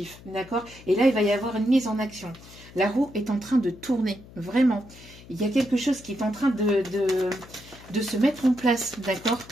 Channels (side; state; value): left; noise; hum, 20 dB below the sound